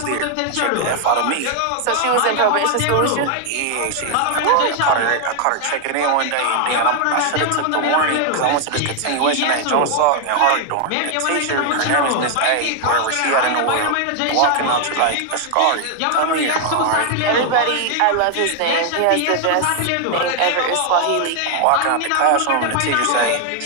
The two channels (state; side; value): different; both; correlation 0.00